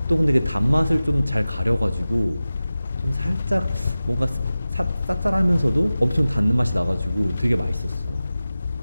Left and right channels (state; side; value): inverted; both; correlation -0.96